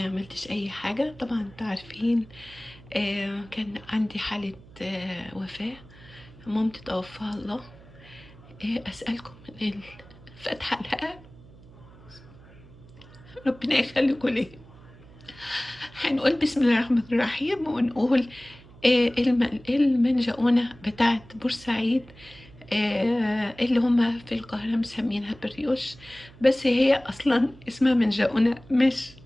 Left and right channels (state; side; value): noise; right; hum, 22 dB below the sound